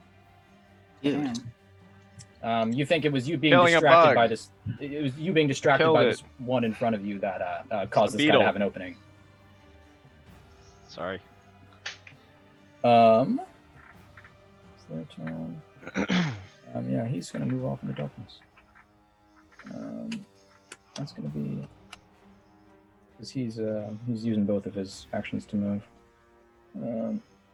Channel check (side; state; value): both; identical; correlation 1.00